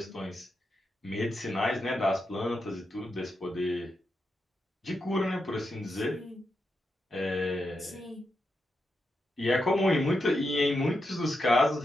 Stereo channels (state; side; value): normal; both; correlation 0.85